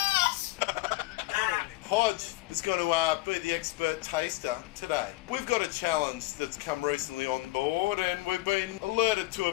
Hodge is going to be the expert taster today. We've got a challenge that's come recently on board, and we've been alerted to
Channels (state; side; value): quieter; right; 19.8 dB